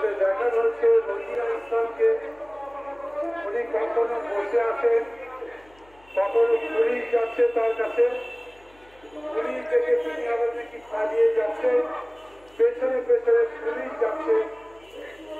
দেখানো হচ্ছে রোজিনা ইসলামকে উনি কখনো বসে আছেন, কখনো পুলিশ যাচ্ছে তার কাছে, পুলিশ থেকে তিনি আবার নাকি পালিয়ে যাচ্ছে, পেছনে পেছনে পুলিশ যাচ্ছে।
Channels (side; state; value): left; noise; hum, 29 dB below the sound